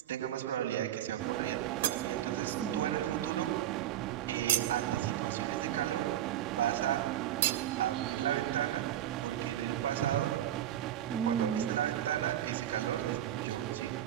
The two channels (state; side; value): quieter; left; 11.9 dB